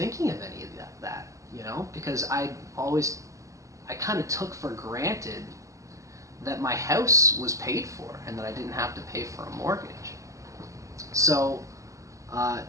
of any of that, because I kind of took for granted that my house was paid for and that I didn't have to pay for a mortgage. So,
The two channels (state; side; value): late; left; 0.16 ms